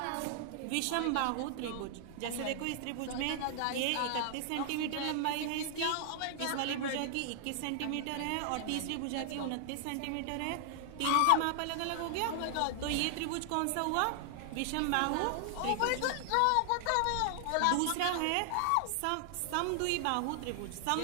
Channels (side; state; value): both; different; correlation 0.00